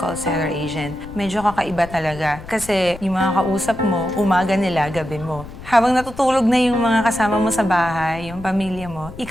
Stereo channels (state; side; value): noise; left; rumble, 15 dB below the sound